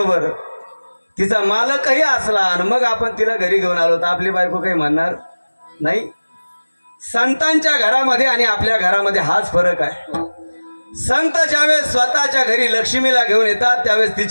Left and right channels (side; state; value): both; inverted; correlation -1.00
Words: तिचा मालकही असला आणि मग आपण तिला घरी घेऊन आलो तर आपली बायको काही म्हणणार नाही. संतांच्या घरामध्ये आणि आपल्या घरामध्ये हाच फरक आहे. संत ज्यावेळेस स्वतःच्या घरी लक्ष्मीला घेऊन येतात त्यावेळेस